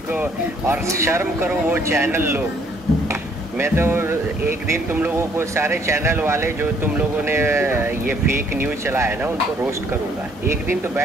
को, और शर्म करो वो चैनल लोग। मैं तो एक दिन तुम लोगों को, सारे चैनल वाले जो तुम लोगों ने ये फेक न्यूज चलाया है ना, उनको रोस्ट करूंगा एक दिन तो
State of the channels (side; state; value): both; normal; correlation 0.64